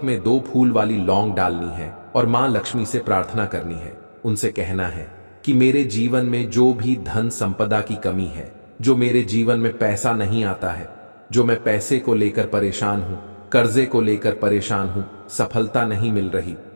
में 2 फूल वाली लौंग डालनी है और मां लक्ष्मी से प्रार्थना करनी है। उनसे कहना है कि मेरे जीवन में जो भी धन संपदा की कमी है, जो मेरे जीवन में पैसा नहीं आता है, जो मैं पैसे को लेकर परेशान हूं, कर्जे को लेकर परेशान हूं, सफलता नहीं मिल रही,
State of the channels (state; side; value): inverted; both; correlation -1.00